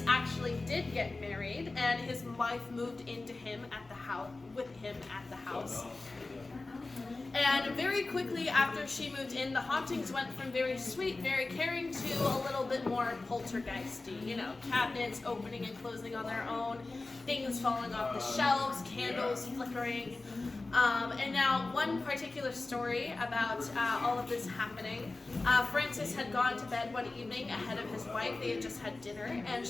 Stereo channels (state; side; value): quieter; right; 3.3 dB